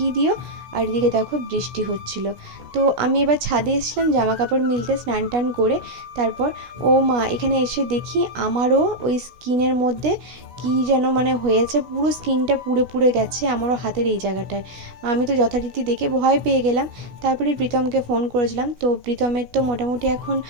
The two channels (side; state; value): left; late; 16 ms